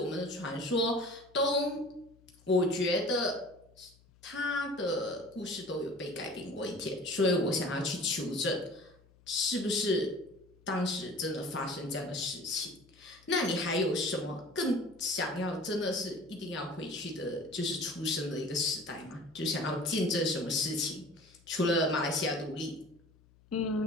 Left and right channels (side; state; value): left; noise; hum, 29 dB below the sound